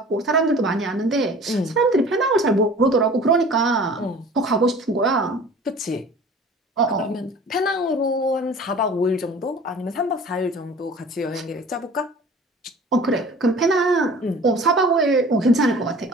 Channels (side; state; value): both; normal; correlation 0.44